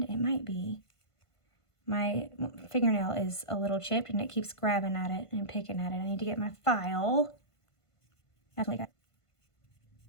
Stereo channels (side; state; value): right; late; 1.5 ms